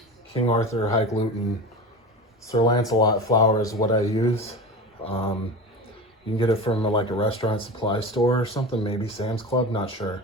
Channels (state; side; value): normal; both; correlation 0.29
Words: King Arthur, high gluten. Sir Lancelot flour is what I use. You can get it from like a restaurant supply store or something, maybe Sam's Club, not sure.